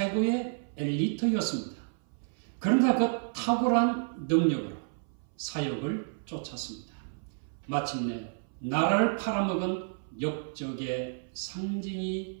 엘리트였습니다. 그러나 그 탁월한 능력으로 사역을 쫓았습니다. 마침내 나라를 팔아먹은 역적의 상징이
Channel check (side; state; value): left; silent; 57 dB below the other